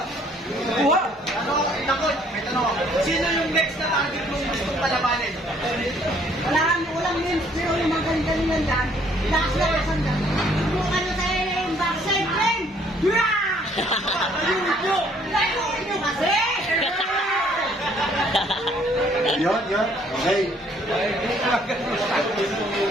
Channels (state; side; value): normal; both; correlation 0.63